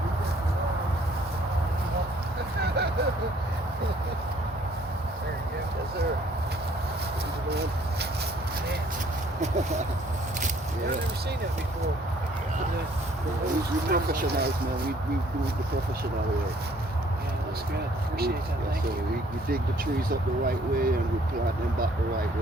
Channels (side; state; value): both; normal; correlation 0.61